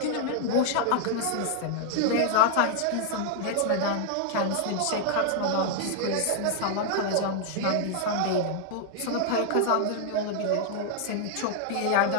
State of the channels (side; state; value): both; different; correlation 0.00